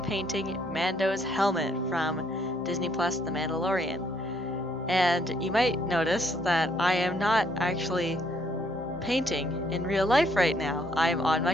painting Mando's helmet from Disney Plus The Mandalorian. And you might notice that I am not actually painting in real life right now. I'm on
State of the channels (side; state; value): both; normal; correlation 0.69